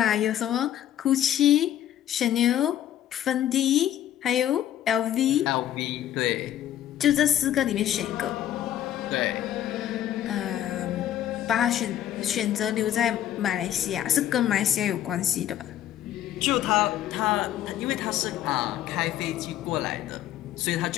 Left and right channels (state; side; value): quieter; right; 11.5 dB